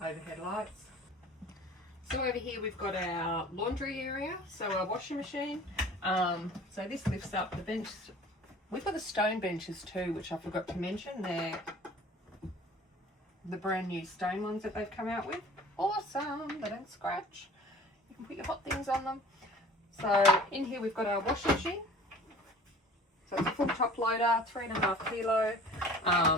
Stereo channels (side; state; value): both; normal; correlation 0.46